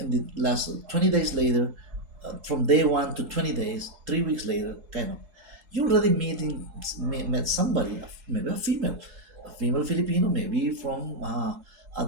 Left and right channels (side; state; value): left; late; 4.7 ms